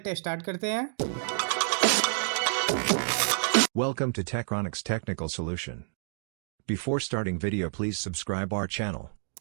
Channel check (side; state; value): left; silent; digital silence